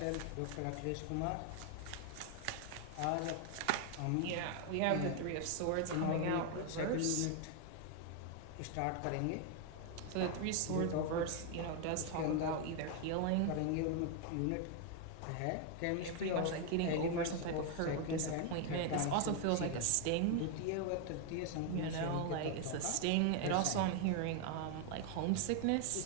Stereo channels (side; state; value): both; different; correlation 0.01